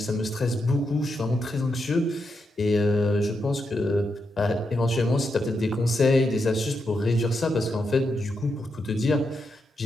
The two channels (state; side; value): normal; both; correlation 0.84